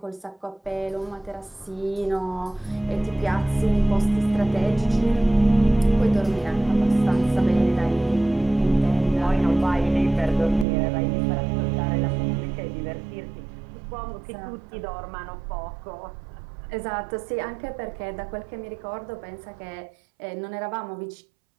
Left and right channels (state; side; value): drops out; left; at 10.7 s